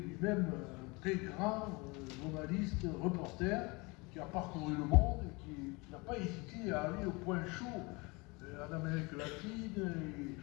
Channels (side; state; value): right; quieter; 26.6 dB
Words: un très grand journaliste, reporter, qui a parcouru le monde et qui n'a pas hésité à aller au point chaud en Amérique latine